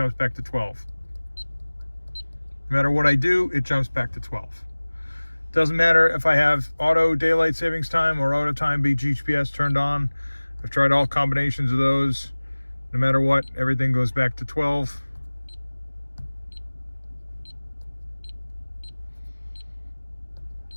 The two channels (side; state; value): both; inverted; correlation -1.00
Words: back to 12. No matter what I do, it jumps back to 12. Doesn't matter if I have auto daylight savings time or auto time GPS turned on. I've tried all combinations of those. No matter what, everything goes back to 12.